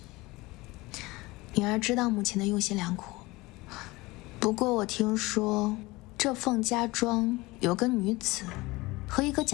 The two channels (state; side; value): quieter; right; 21.6 dB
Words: 女儿知道母亲的用心良苦，不过我听说这凤家庄有个女子和一个